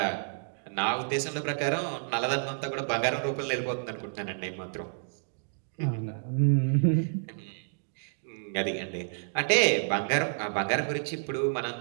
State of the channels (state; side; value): silent; left; digital silence